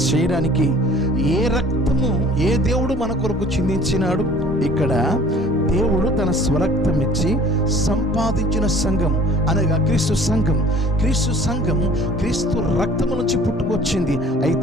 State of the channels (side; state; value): both; normal; correlation 0.50